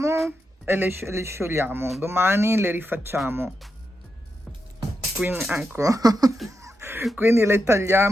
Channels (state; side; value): normal; both; correlation 0.86